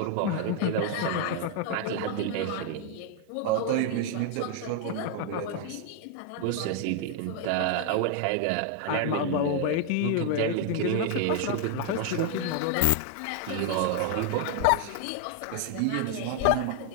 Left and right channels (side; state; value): both; different; correlation 0.00